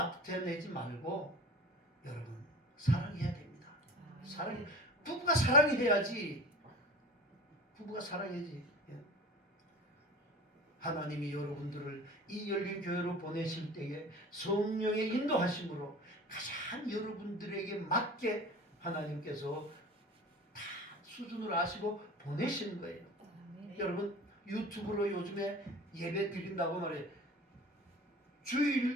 말고 여러분 사랑해야 됩니다. 사랑 부부가 사랑해야지. 부부가 사랑해야지. 예. 하나님이 여러분들을 이 열린 교회로 보내실 때에 성령의 인도하심으로 가장 여러분들에게 맞게 하나님께서 다 수준을 아시고 보내시는 거예요. 여러분 유튜브로 요즘에 예배 드린다고 말해요.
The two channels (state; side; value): normal; both; correlation 0.38